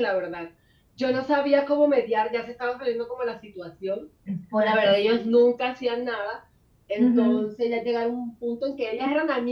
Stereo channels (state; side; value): identical; both; correlation 1.00